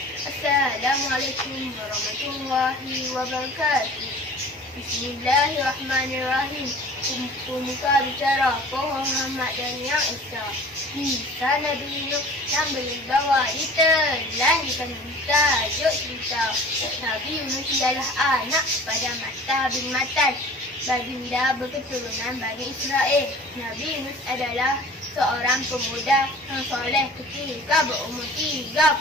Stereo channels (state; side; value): normal; both; correlation 0.44